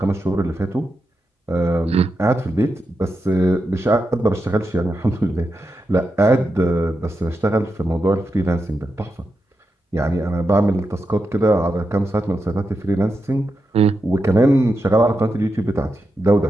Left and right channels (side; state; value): both; normal; correlation 0.87